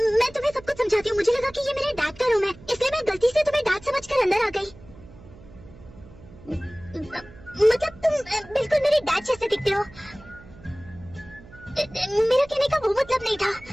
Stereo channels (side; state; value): right; noise; hum, 21 dB below the sound